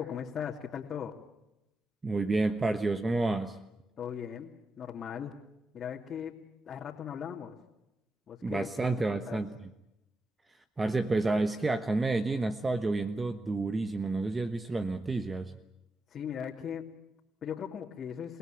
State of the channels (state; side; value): normal; both; correlation 0.87